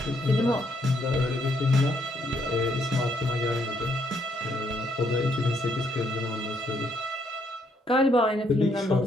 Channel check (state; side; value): normal; both; correlation 0.72